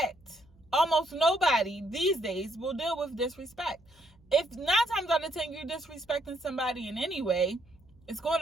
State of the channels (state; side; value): noise; right; hum, 29 dB below the sound